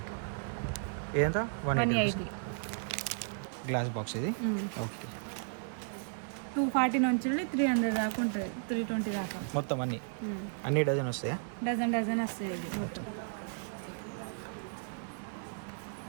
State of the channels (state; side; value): silent; left; digital silence